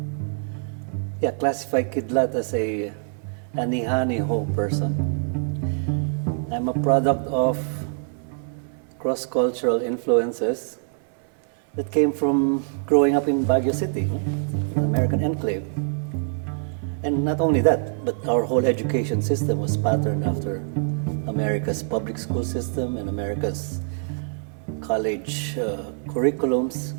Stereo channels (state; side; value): silent; left; 62 dB below the other